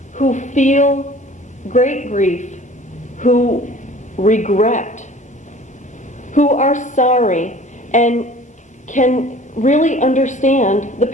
who feel great grief, who regret, who are sorry, and can really understand the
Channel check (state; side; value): normal; both; correlation 0.47